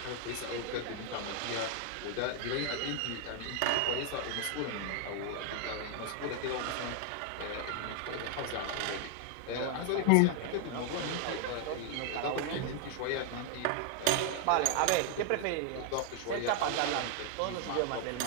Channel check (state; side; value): different; both; correlation 0.00